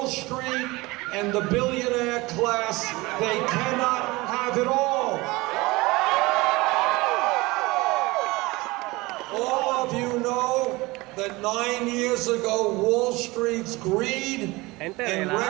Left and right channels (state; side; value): quieter; left; 22.1 dB